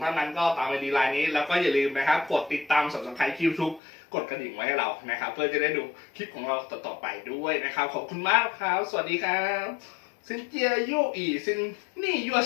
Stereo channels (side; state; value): right; drops out; at 3.8 s